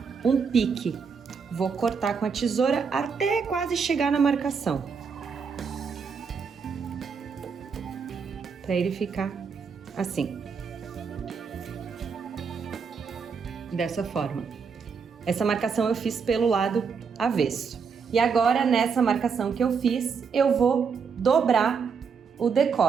um pique. Vou cortar com a tesoura até quase chegar na marcação. Para ele ficar assim. Dessa forma. Essa marcação eu fiz pelo lado avesso. E agora, nessa marcação que eu fiz, eu vou dobrar o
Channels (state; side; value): quieter; left; 5.8 dB